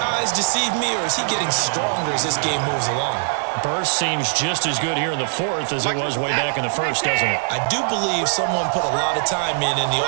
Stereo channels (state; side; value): silent; left; 65 dB below the other